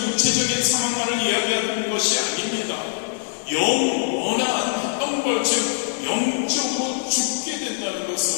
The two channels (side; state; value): right; silent; 63 dB below the other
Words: 육체적인 사망만을 이야기하는 것이 아닙니다. 영원한 형벌, 즉 영적으로 죽게 된다는